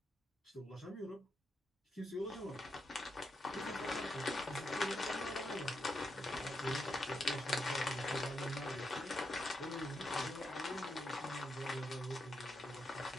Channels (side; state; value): both; normal; correlation 0.83